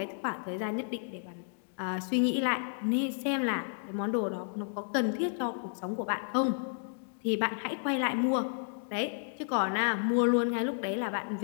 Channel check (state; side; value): silent; right; digital silence